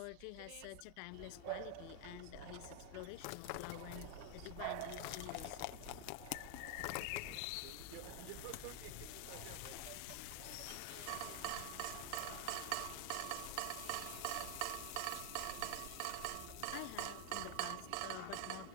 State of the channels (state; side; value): different; both; correlation 0.00